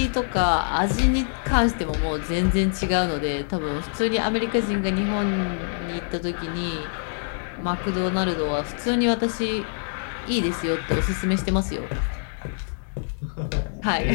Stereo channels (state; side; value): silent; right; digital silence